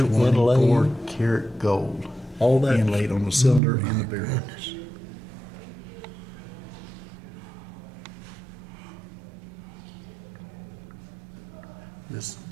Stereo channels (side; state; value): left; drops out; at 3.6 s